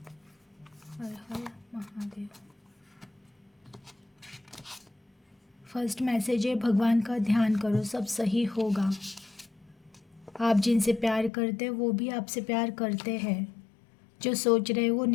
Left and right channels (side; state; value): right; drops out; at 11.3 s